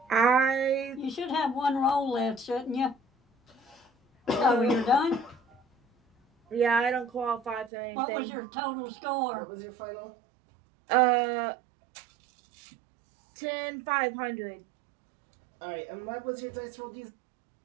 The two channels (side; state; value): left; drops out; at 7.7 s